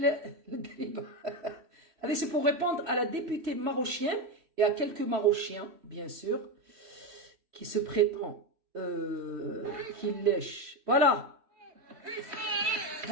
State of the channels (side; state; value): left; late; 3.1 ms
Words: هذه c'est pour répondre à la députée marochienne et à quelques marochiens bien sûr qui se prétendent qui lèchent. Voilà.